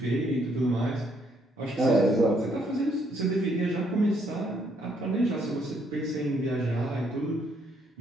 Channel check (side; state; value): both; normal; correlation 0.71